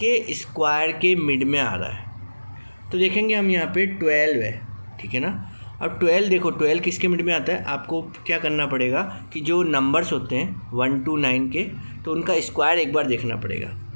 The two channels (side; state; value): both; inverted; correlation -1.00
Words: स्क्वायर के मिड में आ रहा है। तो देखेंगे हम यहाँ पे 12 है, ठीक है ना। अब 12 देखो 12 किसके मिड में आता है, आपको क्या करना पड़ेगा कि जो नंबर्स होते हैं 1 to 9 के, तो उनका स्क्वायर एक बार देखना पड़ेगा।